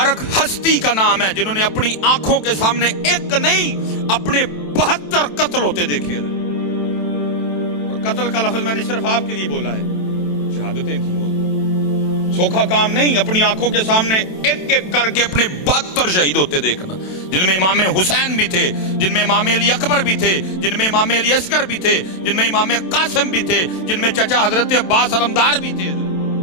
ہستی کا نام ہے جنہوں نے اپنی آنکھوں کے سامنے ایک نہیں اپنے 72 قتل ہوتے دیکھے. اور قتل کا لفظ میں نے صرف آپ کے لیے بولا ہے, شہادتیں تھیں. سوکھا کام نہیں, اپنی آنکھوں کے سامنے ایک ایک کر کے اپنے 72 شہید ہوتے دیکھنا, جن میں امام حسین بھی تھے, جن میں امام علی اکبر بھی تھے, جن میں امام علی اصغر بھی تھے, جن میں امام قاسم بھی تھے, جن میں چچا حضرت عباس علمدار بھی تھے.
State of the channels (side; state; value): right; late; 27 ms